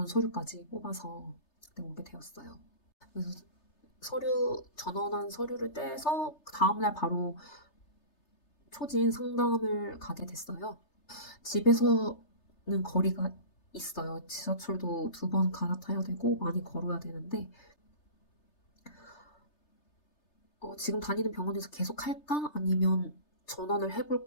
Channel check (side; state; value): right; late; 3.3 ms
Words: 서류까지 뽑아서 그때 오게 되었어요. 그래서 전원한 서류를 떼서 그 다음날 바로 초진 상담을 가게 됐어요. 집에서는 거리가 있어요. 지하철도 2번 갈아타야 되고 많이 걸어야 되는데 지금 다니는 병원에서 계속 할까? 아니면 전원을